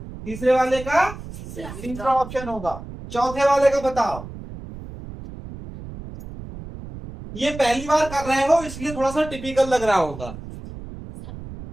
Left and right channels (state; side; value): noise; right; rumble, 12 dB below the sound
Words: तीसरे वाले का तीसरा ऑप्शन होगा। चौथे वाले का बताओ, ये पहली बार कर रहे हो इसलिए थोड़ा सा टिपिकल लग रहा होगा।